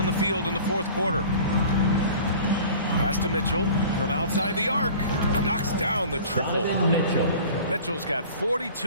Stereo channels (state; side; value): inverted; both; correlation -0.43